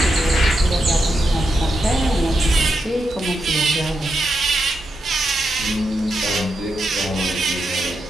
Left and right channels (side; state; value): both; normal; correlation 0.85